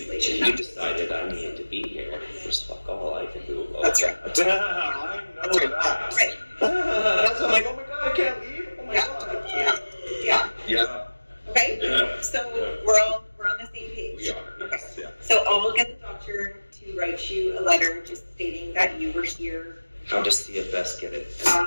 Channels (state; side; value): inverted; both; correlation -1.00